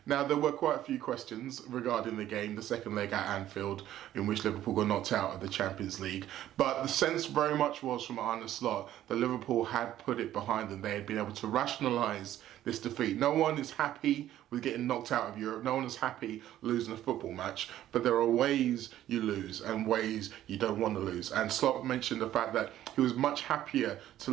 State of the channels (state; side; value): quieter; left; 12.7 dB